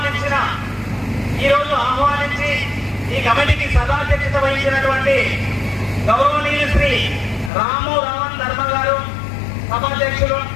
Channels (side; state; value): right; drops out; at 7.5 s